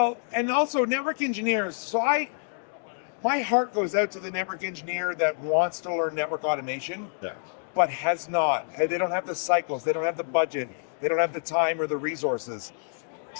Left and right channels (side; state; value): right; silent; digital silence